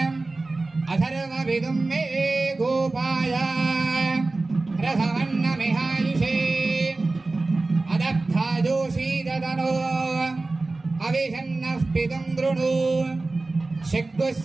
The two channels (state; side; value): quieter; left; 3.3 dB